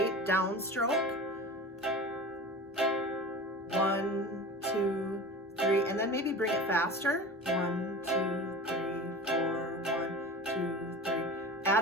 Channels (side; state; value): both; normal; correlation 0.33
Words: downstroke. 1, 2, 3, and then maybe bring it faster. 1, 2, 3, 4, 1, 2, 3.